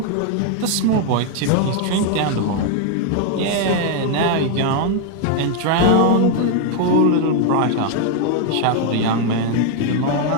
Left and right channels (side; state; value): both; different; correlation 0.01